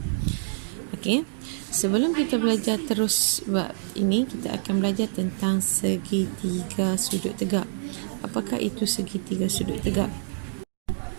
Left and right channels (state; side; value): silent; left; digital silence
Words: Okey. Sebelum kita belajar terus bab ini, kita akan belajar tentang segitiga sudut tegak. Apakah itu segitiga sudut tegak?